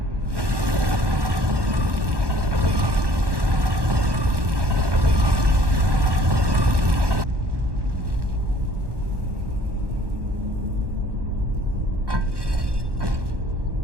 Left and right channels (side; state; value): left; late; 1.2 ms